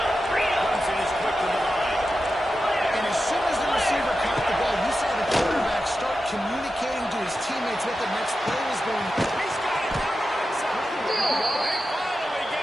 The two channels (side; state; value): both; normal; correlation 0.91